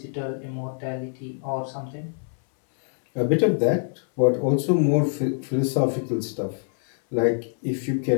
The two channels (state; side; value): silent; right; 62 dB below the other